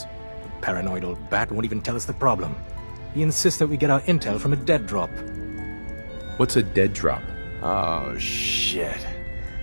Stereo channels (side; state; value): both; inverted; correlation -1.00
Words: The paranoid old bat won't even tell us the problem. He insists that we get our intel from a dead drop. What's a dead drop? Oh, shit.